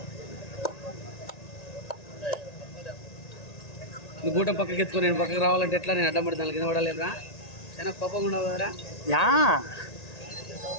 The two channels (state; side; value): late; right; 1.9 ms